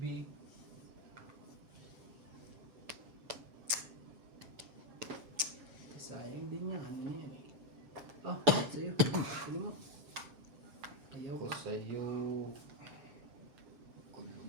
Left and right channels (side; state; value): left; late; 6.8 ms